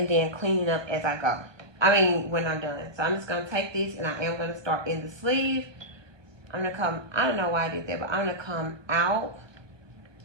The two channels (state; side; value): late; left; 1.2 ms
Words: then cleaning up as I go. I mean, when I'm done. So I'm just going to take this and I am going to start in the sleeve. I'm going to come, I don't know why I did that, but I'm going to come out.